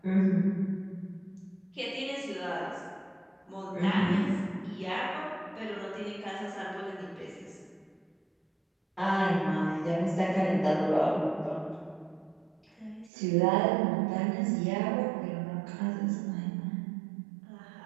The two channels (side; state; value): left; drops out; at 13.1 s